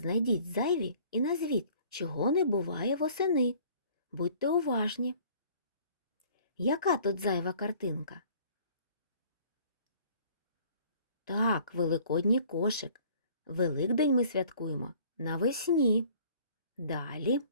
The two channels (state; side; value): inverted; both; correlation -0.54